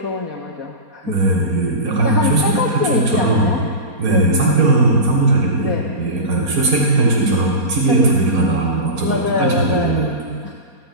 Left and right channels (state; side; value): late; left; 4.3 ms